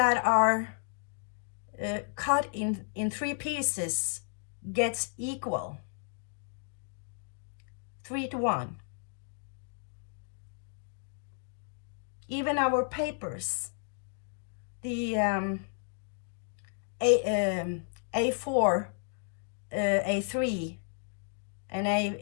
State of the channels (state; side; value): silent; right; digital silence